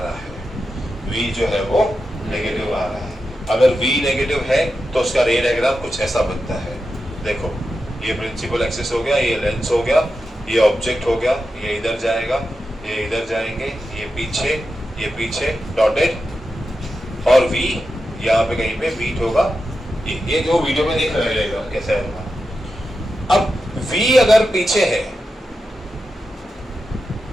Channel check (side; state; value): both; normal; correlation 0.90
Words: है, V जो है वो नेगेटिव आ रहा है। अगर V नेगेटिव है तो उसका रे डायग्राम कुछ ऐसा बनता है। देखो ये प्रिंसिपल एक्सिस हो गया, ये लेंस हो गया, ये ऑब्जेक्ट हो गया, ये इधर जाएगा, ये इधर जाएंगे, ये पीछे डॉटेड, और V यहाँ पे कहीं पे बीट होगा। ये जो वीडियो में देख रहे रहेगा कैसा है। अब V अगर पीछे है,